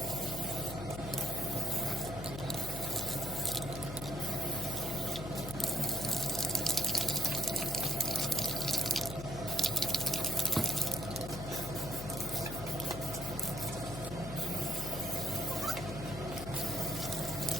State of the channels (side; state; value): left; noise; hum, 8 dB below the sound